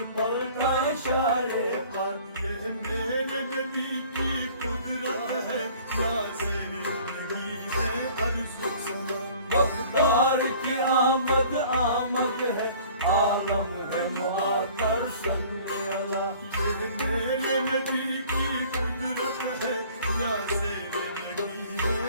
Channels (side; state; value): both; inverted; correlation -0.50